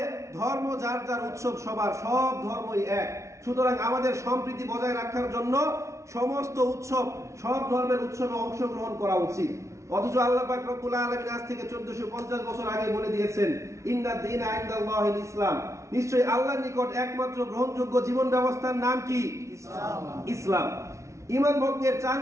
ধর্ম যার যার উৎসব সবার, সব ধর্মই এক, সুতরাং আমাদের সম্প্রীতি বজায় রাখার জন্য সমস্ত উৎসব, সব ধর্মের উৎসবে অংশগ্রহণ করা উচিত। অথচ আল্লাহ পাক রব্বুল আলামিন আজ থেকে 1450 বছর আগে বলে দিয়েছেন, ইন্নাদ দীনা ইনদাল্লাহিল ইসলাম, নিশ্চয়ই আল্লাহর নিকট একমাত্র গ্রহণযোগ্য জীবন ব্যবস্থার নাম কি? ইসলাম। ঈমান ভঙ্গের 4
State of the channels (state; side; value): late; left; 0.14 ms